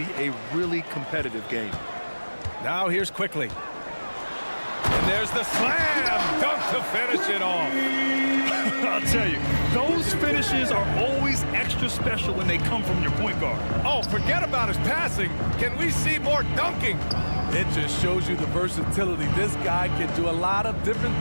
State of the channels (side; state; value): both; inverted; correlation -1.00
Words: a really competitive game. Now here's Quickly. And there's the slam dunk to finish it off. I'll tell you, those finishes are always extra special when they come from your point guard. Oh, forget about his passing. Can we see more dunking? It just shows you the versatility. This guy can do a lot of different